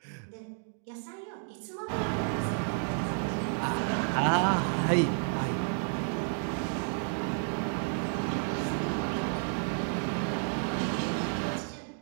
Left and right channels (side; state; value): left; silent; 57 dB below the other